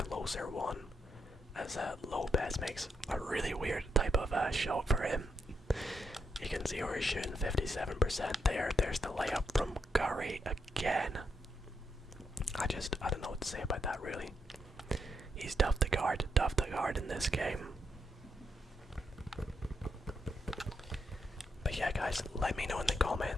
closer one, as Lopez makes a really weird type of shot for him. You can see where he's shooting 57% there. There's the layup from Curry again. I don't know what to say about that, really. He's tough to guard in this game. But yeah, yeah, guys, let me know in the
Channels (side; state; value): both; normal; correlation 0.80